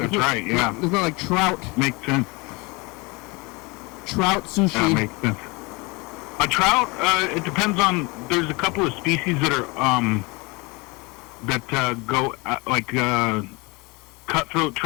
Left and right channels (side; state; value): right; quieter; 26.5 dB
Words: right, yeah. There's not like trout. Makes sense. Trout sushi. Yeah, makes sense. A trout, it depends on, there's a couple of species that are, go, like, cutthroat